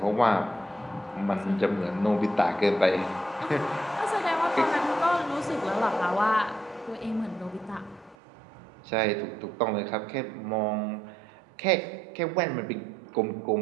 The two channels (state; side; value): drops out; left; at 8.2 s